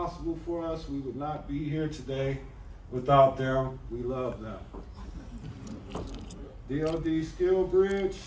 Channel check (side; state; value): both; identical; correlation 1.00